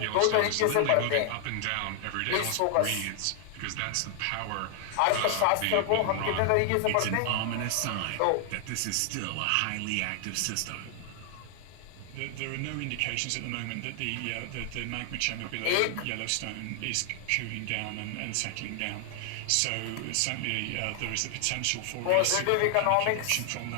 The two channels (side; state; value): both; different; correlation 0.00